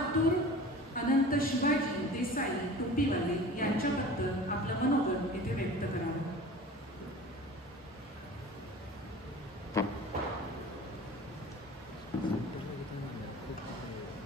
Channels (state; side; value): normal; both; correlation 0.40